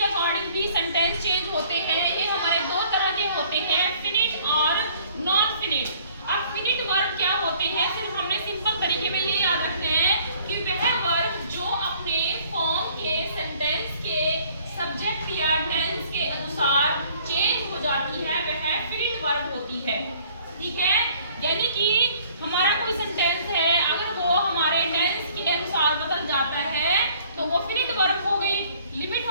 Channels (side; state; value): both; inverted; correlation -0.58